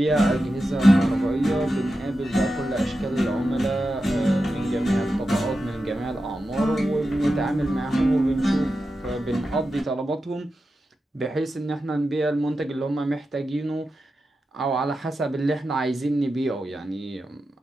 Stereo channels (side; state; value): both; normal; correlation 0.91